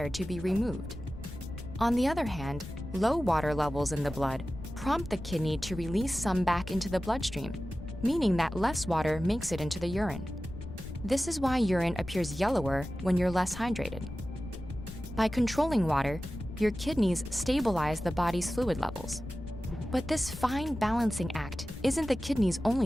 to be removed. On the other hand, low water levels in the blood prompt the kidney to release some back into the bloodstream, meaning that less water makes it into the urine. This is why urine appears yellower when you're less hydrated. By controlling water, your kidneys stabilize the body's fluid levels. But this fine balancing act isn't the kidney's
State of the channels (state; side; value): noise; left; rumble, 11 dB below the sound